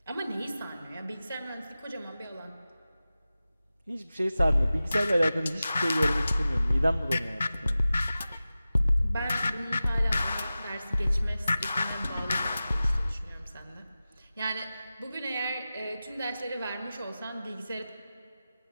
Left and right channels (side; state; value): both; inverted; correlation -0.95